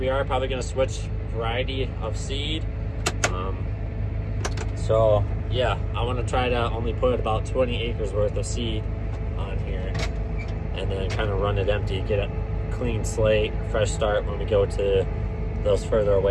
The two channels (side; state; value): both; identical; correlation 1.00